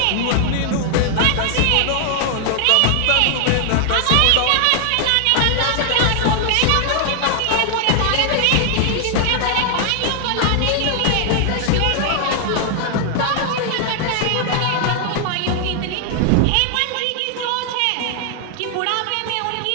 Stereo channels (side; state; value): both; different; correlation 0.00